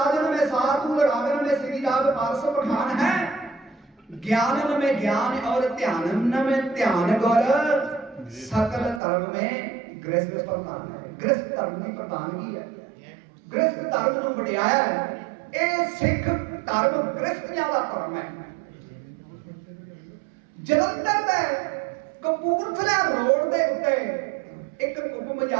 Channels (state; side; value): drops out; left; at 9.0 s